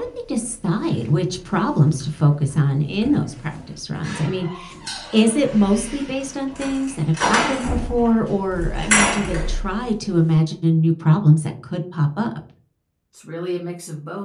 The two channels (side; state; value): both; identical; correlation 1.00